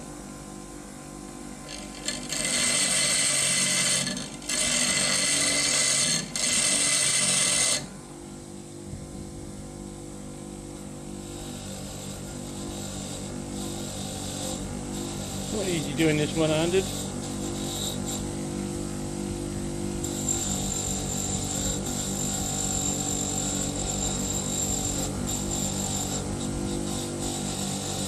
Not easy doing this one-handed.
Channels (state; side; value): identical; both; correlation 1.00